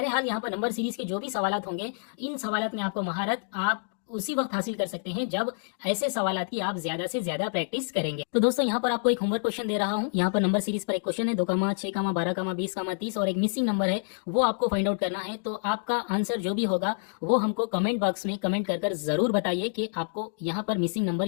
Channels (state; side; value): silent; right; digital silence